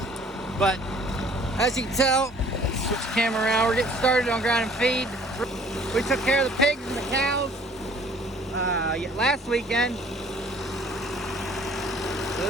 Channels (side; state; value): both; normal; correlation 0.54